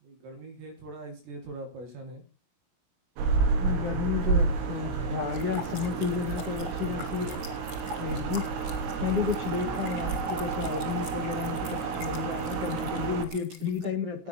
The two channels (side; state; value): left; late; 17 ms